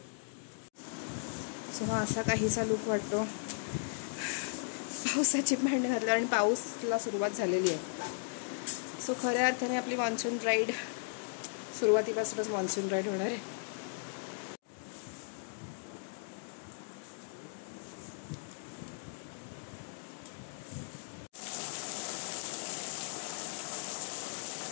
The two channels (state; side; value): silent; right; digital silence